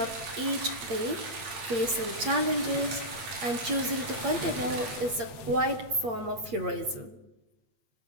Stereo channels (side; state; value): left; late; 8.6 ms